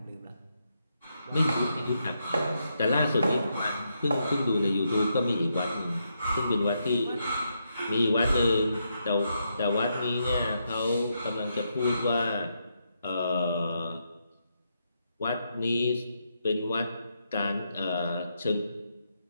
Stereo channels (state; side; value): inverted; both; correlation -0.81